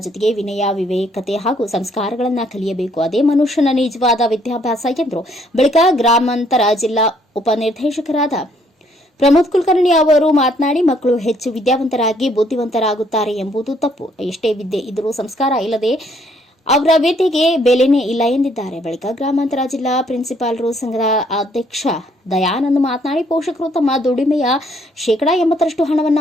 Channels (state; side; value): normal; both; correlation 0.67